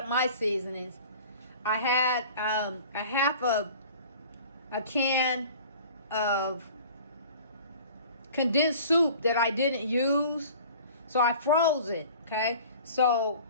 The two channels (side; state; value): both; inverted; correlation -0.45